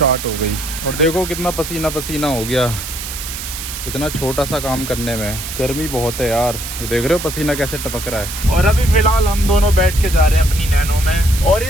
हो गई और देखो कितना पसीना पसीना हो गया, इतना छोटा सा काम करने में। गर्मी बहुत है यार, ये देख रहे हो पसीना कैसे टपक रहा है। और अभी फिलहाल हम दोनों बैठ के जा रहे हैं अपनी नैनो में। और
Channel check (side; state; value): right; noise; hiss, 8 dB below the sound